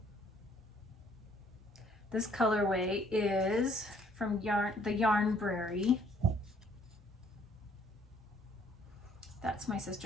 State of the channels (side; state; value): both; normal; correlation 0.62